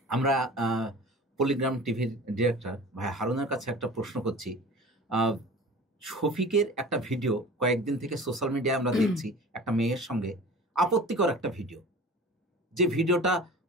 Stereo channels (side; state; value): both; normal; correlation 0.39